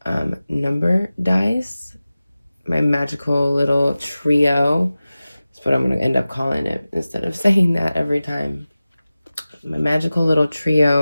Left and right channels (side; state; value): both; inverted; correlation -0.96